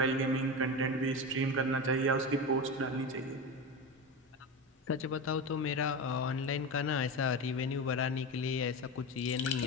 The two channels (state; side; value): normal; both; correlation 0.22